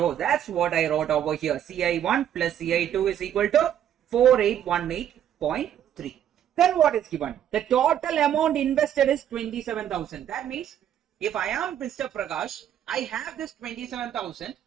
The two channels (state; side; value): quieter; left; 10.3 dB